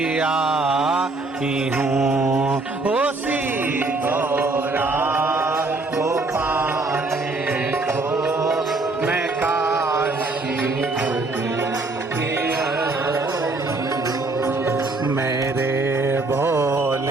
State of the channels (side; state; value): left; quieter; 3.3 dB